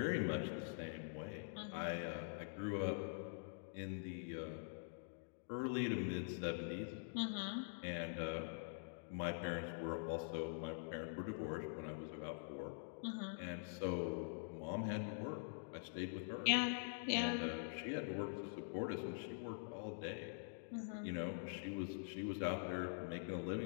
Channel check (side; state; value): right; silent; digital silence